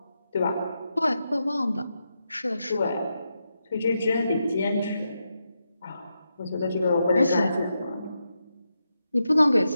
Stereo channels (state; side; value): inverted; both; correlation -0.86